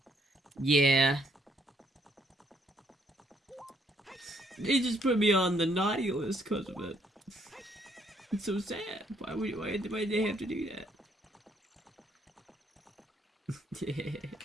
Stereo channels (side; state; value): both; normal; correlation 0.69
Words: Yeah. They just put me on the naughty list because of it. It's so sad. Why did they have to do that?